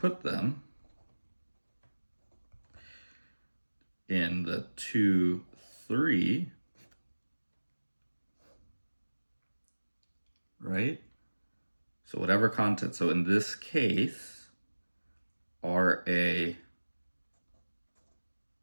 them in the 2, 3, right? So whatever content, so in this case, RA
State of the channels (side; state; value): both; inverted; correlation -1.00